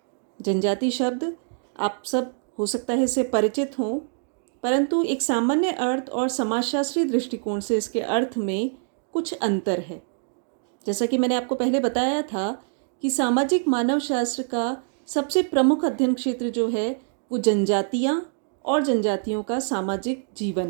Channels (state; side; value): silent; left; 62 dB below the other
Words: जनजाति शब्द आप सब हो सकता है इससे परिचित हों, परंतु एक सामान्य अर्थ और समाजशास्त्रीय दृष्टिकोण से इसके अर्थ में कुछ अंतर है। जैसा कि मैंने आपको पहले बताया था कि सामाजिक मानव शास्त्र का सबसे प्रमुख अध्ययन क्षेत्र जो है वो जनजातियाँ और जनजातियों का सामाजिक